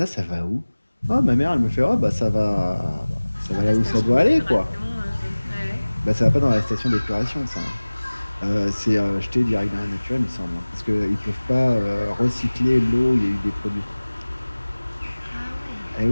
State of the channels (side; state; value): both; inverted; correlation -1.00